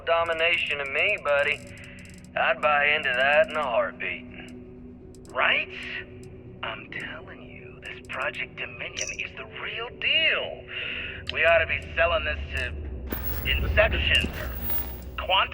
domination to me, buddy. I'd buy into that in a heartbeat. Right? I'm telling you, this Project Dominion is the real deal. We ought to be selling this to Inception or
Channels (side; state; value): both; identical; correlation 1.00